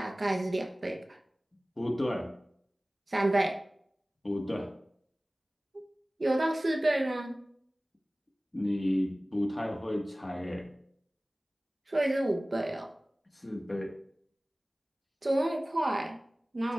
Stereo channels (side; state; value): both; normal; correlation 0.98